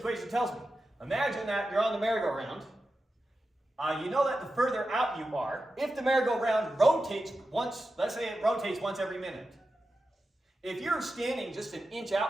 tells me. Imagine that you're on the merry-go-round. You know that the further out you are, if the merry-go-round rotates once, let's say it rotates once every minute. If you're standing just an inch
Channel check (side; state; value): both; normal; correlation 0.91